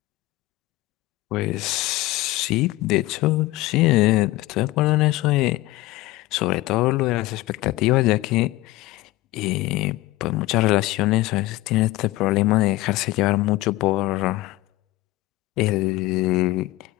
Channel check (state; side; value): quieter; right; 18.7 dB